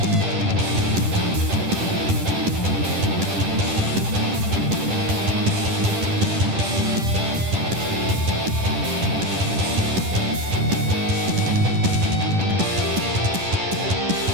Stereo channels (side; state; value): left; late; 10 ms